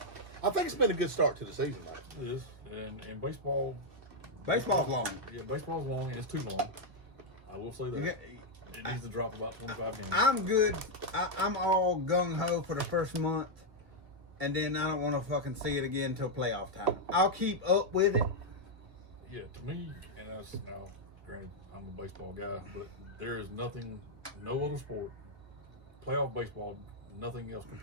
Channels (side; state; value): left; late; 2.1 ms